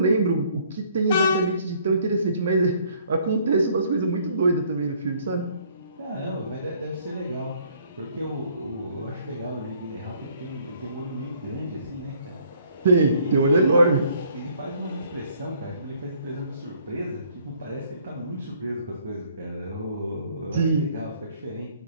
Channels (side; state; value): both; inverted; correlation -0.62